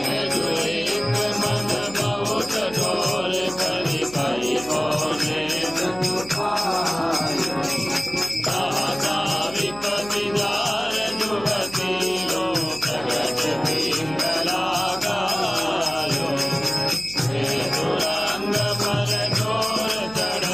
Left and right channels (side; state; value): right; noise; hum, 18 dB below the sound